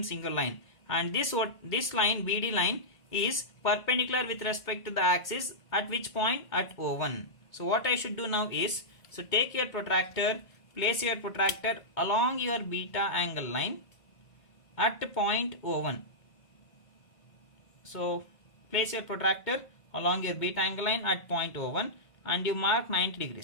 single line, and this line BD line is perpendicular with respect to the axis at which point? At O1. So what I should do now is, so take your protractor, place your protractor along your beta angle line at point O1. So place your protractor along your beta angle line at point O1 and you mark 90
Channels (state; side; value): late; right; 2.2 ms